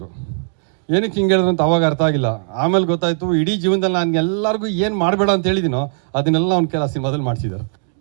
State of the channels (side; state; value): left; silent; digital silence